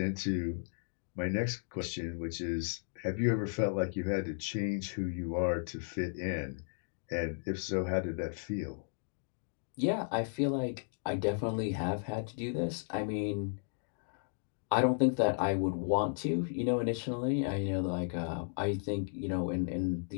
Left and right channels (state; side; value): silent; right; digital silence